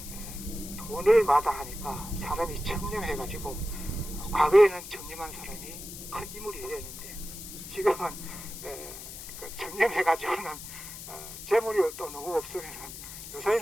돈을 마다하니까 사람이 청렴해가지고 과거에는 청렴한 사람이 큰 인물이 되었는데 지금은 청렴해가지고는 재물이 또 너무 없으면은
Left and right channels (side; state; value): left; noise; hiss, 11 dB below the sound